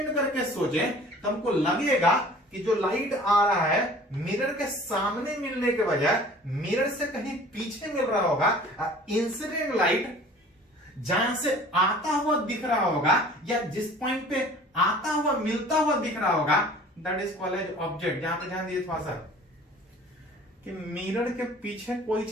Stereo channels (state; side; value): normal; both; correlation 0.47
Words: करके सोचे तो हमको लगेगा कि जो लाइट आ रहा है मिरर के सामने मिलने के बजाय मिरर से कहीं पीछे मिल रहा होगा। इंसिडेंट लाइट जहां से आता हुआ दिख रहा होगा या जिस पॉइंट पे आता हुआ मिलता हुआ दिख रहा होगा, that is called as object. यहां पे ध्यान दीजिए थोड़ा सा कि मिरर के पीछे कोई